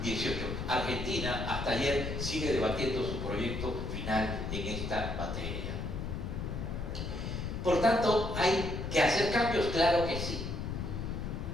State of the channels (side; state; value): left; noise; rumble, 4 dB below the sound